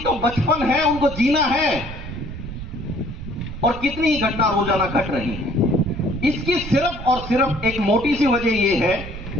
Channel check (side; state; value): right; noise; rumble, 10 dB below the sound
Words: बचपन है, उनको जीना है, और कितनी ही घटना रोजाना घट रही है। इसकी सिर्फ और सिर्फ एक मोटी सी वजह यह है